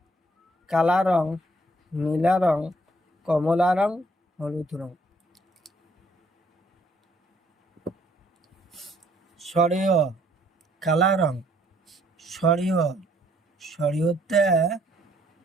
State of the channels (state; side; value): normal; both; correlation 0.65